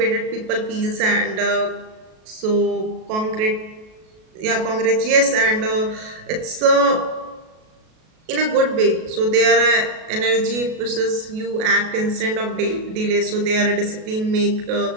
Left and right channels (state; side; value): late; left; 37 ms